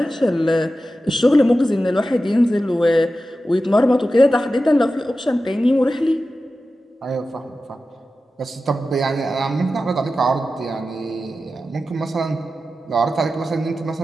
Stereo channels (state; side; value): normal; both; correlation 0.93